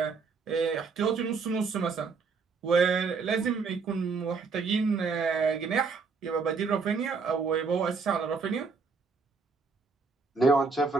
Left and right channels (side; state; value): left; quieter; 4.8 dB